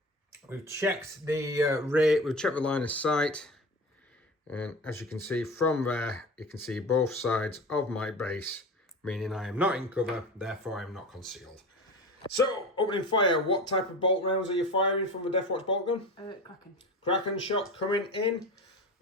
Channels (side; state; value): both; normal; correlation 0.31